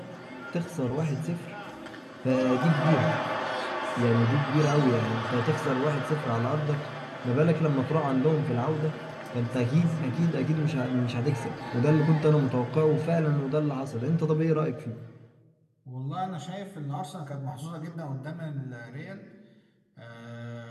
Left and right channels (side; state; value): both; identical; correlation 1.00